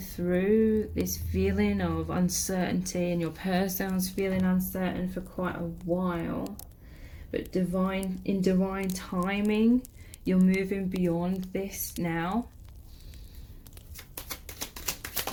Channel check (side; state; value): both; identical; correlation 1.00